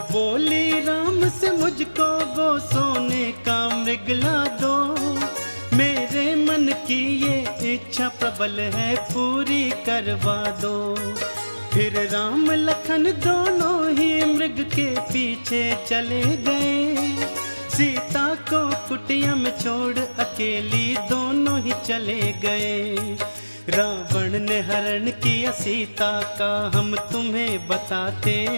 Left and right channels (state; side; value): inverted; both; correlation -1.00